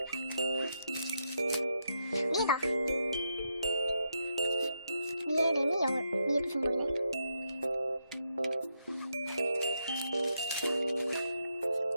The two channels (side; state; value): both; inverted; correlation -0.81